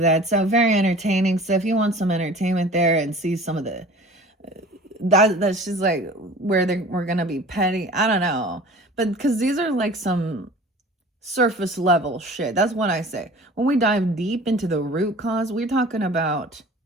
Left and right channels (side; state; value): both; normal; correlation 0.43